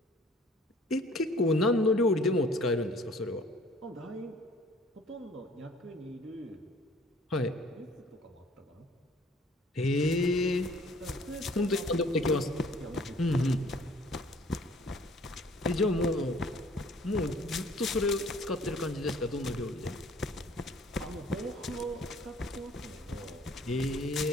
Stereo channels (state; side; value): normal; both; correlation 0.55